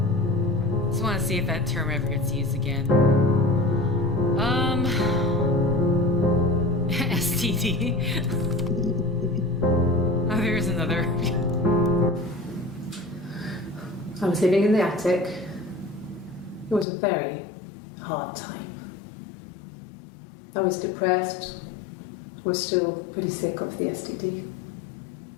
Just want to see if that term ever gets used again. STD. Oh, there's another. I was living in the attic. It was a very hard time. I was depressed, was still pretty sick of the STD.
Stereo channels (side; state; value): right; drops out; at 16.9 s